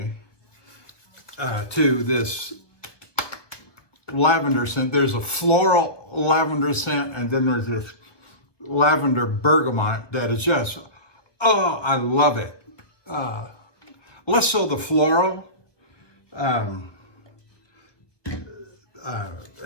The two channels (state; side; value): late; right; 1.1 ms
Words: to this lavender scent. There's a floral lavender scent, and then there's this lavender bergamot that is just, oh, I love it. Less so the floral. I'm